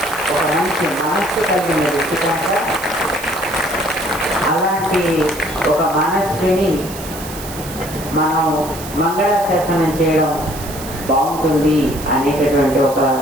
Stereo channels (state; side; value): noise; right; hiss, 13 dB below the sound